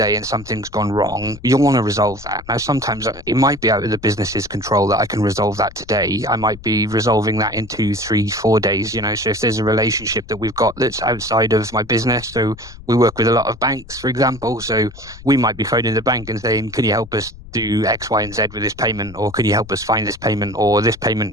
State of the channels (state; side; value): noise; left; rumble, 18 dB below the sound